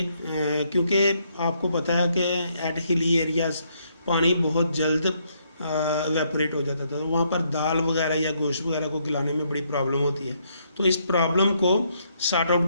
क्योंकि आपको पता है कि एट हिली एरियाज़ पानी बहुत जल्द इवेपोरेट हो जाता था, तो वहाँ पर दाल वगैरह या गोश्त वगैरह को गलाने में बड़ी प्रॉब्लम होती है। तो इस प्रॉब्लम को सॉर्ट आउट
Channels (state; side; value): inverted; both; correlation -0.74